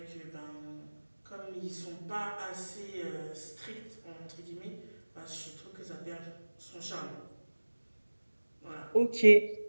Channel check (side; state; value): both; inverted; correlation -1.00